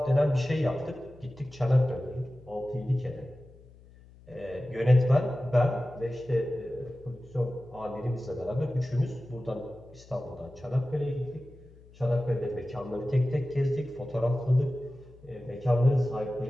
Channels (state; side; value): noise; left; hum, 23 dB below the sound